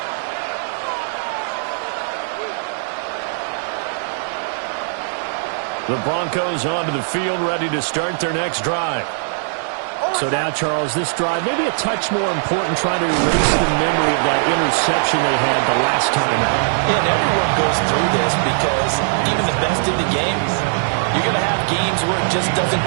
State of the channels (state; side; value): silent; left; digital silence